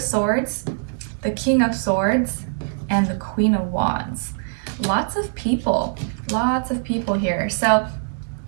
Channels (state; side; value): silent; left; digital silence